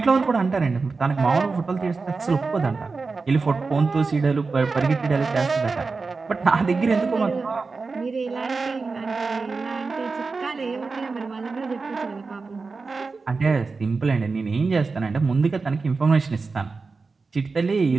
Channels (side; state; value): left; quieter; 4.3 dB